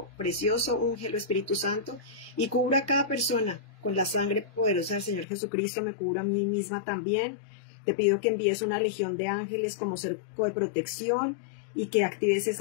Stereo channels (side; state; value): right; drops out; at 5.2 s